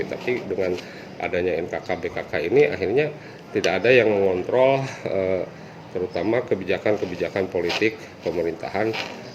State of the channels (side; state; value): both; identical; correlation 1.00